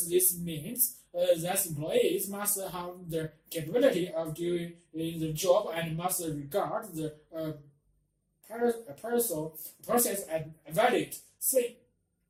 this means that employees must have the capability of doing the job and must regard the process as valid.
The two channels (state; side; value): identical; both; correlation 1.00